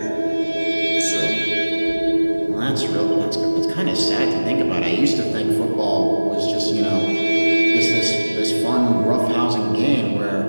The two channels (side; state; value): both; inverted; correlation -1.00